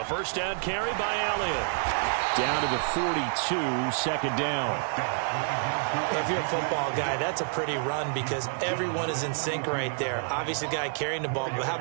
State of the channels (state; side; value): silent; left; 59 dB below the other